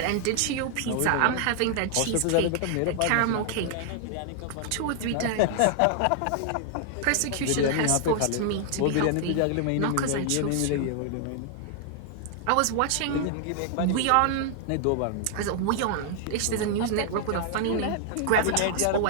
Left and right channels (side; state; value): both; different; correlation 0.00